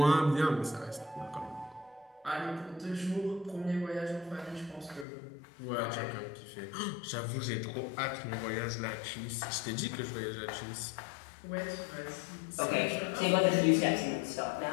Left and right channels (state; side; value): drops out; right; at 5.1 s